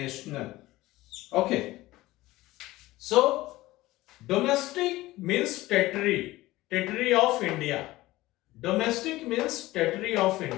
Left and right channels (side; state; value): right; quieter; 18.0 dB